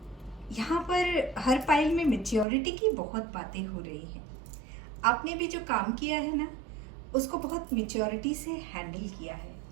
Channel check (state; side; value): drops out; left; at 2.5 s